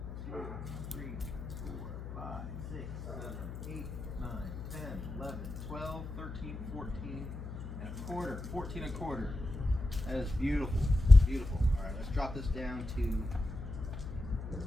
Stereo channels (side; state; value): left; noise; hum, 9 dB below the sound